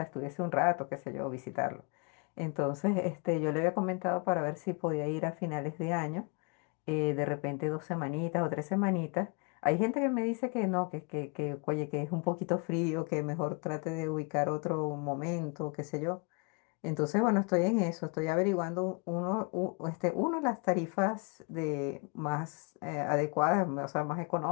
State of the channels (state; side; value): quieter; right; 33.7 dB